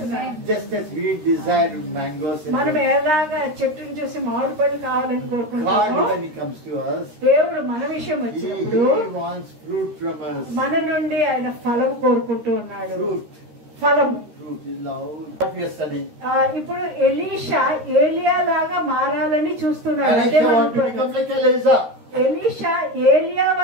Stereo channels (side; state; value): left; late; 13 ms